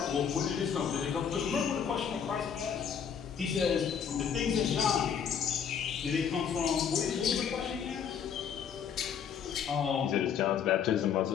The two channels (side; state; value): right; quieter; 7.6 dB